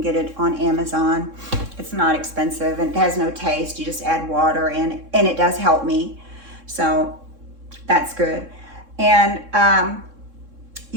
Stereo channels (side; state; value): left; late; 3.6 ms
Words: it on Amazon. It's not expensive, and it has no taste. You just add water, and it does help me. So that's good. And,